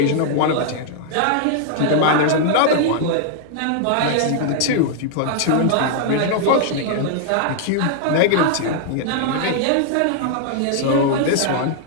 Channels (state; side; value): different; both; correlation 0.00